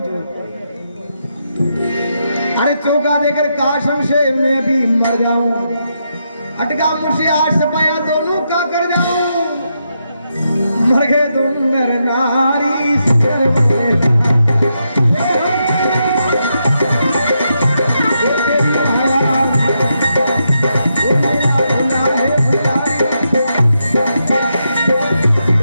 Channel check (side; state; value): both; inverted; correlation -0.82